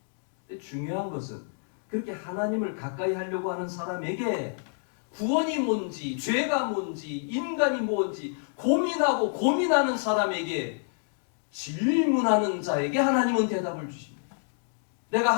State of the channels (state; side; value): silent; right; digital silence